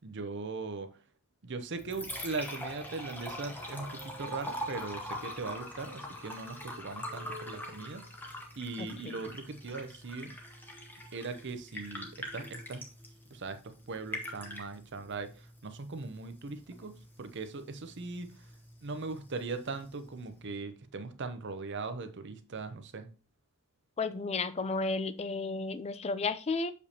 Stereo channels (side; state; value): both; normal; correlation 0.22